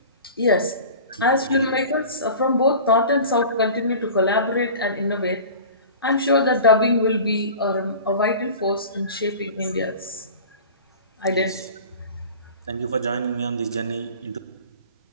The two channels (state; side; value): inverted; both; correlation -0.39